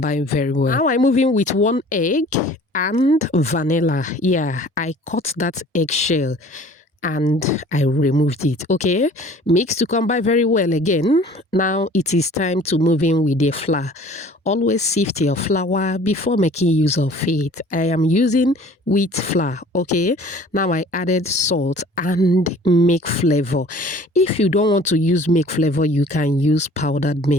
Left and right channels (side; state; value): both; normal; correlation 0.49